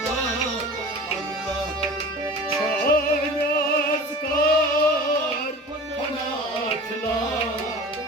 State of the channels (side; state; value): both; normal; correlation 0.38